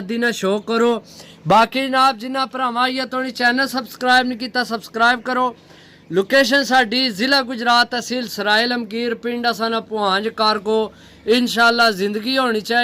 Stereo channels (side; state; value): both; identical; correlation 1.00